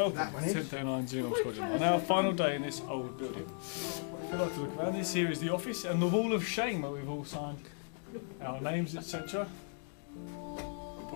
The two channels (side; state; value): right; silent; 54 dB below the other